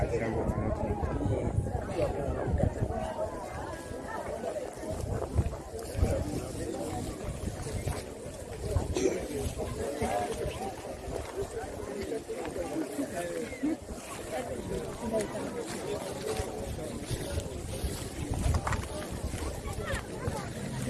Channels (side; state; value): both; identical; correlation 1.00